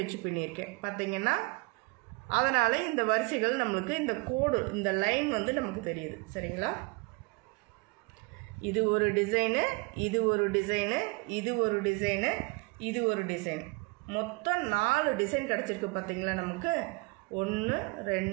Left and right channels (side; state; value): left; quieter; 27.6 dB